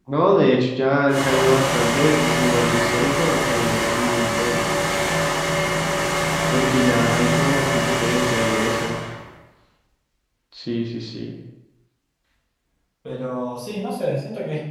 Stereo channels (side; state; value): both; identical; correlation 1.00